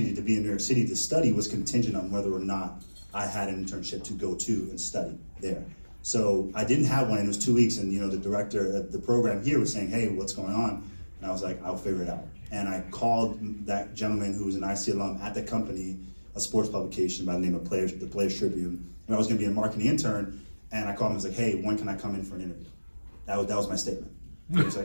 to be in New York City to study was contingent on whether or not I had an internship to go to and study there. So I didn't have one, and it was 2 weeks, and the director of the program here was saying, hey, what's going on? And I was like, I'll figure it out. And I called that gentleman who was an IC alum at the company, a sports publication by the name of the Players Tribune, and I was gonna be a marketing intern, and I called him and was like, hey, when can I come in for an interview? That was my statement. He was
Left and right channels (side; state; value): both; inverted; correlation -1.00